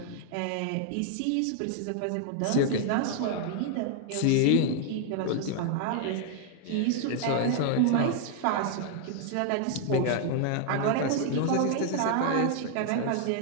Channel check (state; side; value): different; both; correlation 0.00